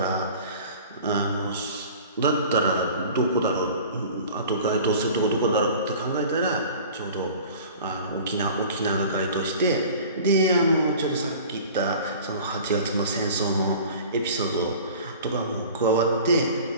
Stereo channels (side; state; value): both; inverted; correlation -0.43